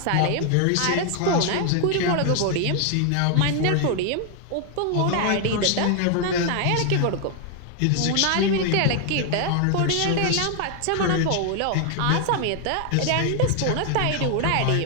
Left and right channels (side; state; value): both; different; correlation 0.00